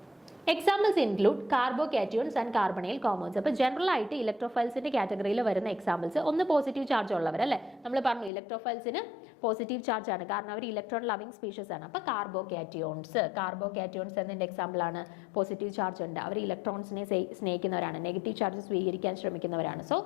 examples include carbocations and carbonyl compounds. അപ്പോൾ ജനറൽ ആയിട്ട് ഇലക്ട്രോഫൈൽസിന്റെ കാറ്റഗറിയിൽ വരുന്ന എക്സാമ്പിൾസ് ഒന്ന് പോസിറ്റീവ് ചാർജ് ഉള്ളവർ അല്ലേ, നമ്മൾ പറഞ്ഞു ഇലക്ട്രോഫൈൽസിന് പോസിറ്റീവ് ചാർജ് ആണ് കാരണം അവർ ഇലക്ട്രോൺ ലവിംഗ് സ്പീഷീസ് ആണ്. അപ്പോൾ കാർബോകാറ്റയോൺസ് എന്നതിന്റെ എക്സാമ്പിൾ ആണ്, പോസിറ്റീവ് ചാർജ് ഉണ്ട്, അവർ ഇലക്ട്രോൺസിനെ സ്നേഹിക്കുന്നവരാണ്, നെഗറ്റീവ് ചാർജ് സ്വീകരിക്കാൻ ശ്രമിക്കുന്നവരാണ്. സോ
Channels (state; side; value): drops out; right; at 8.3 s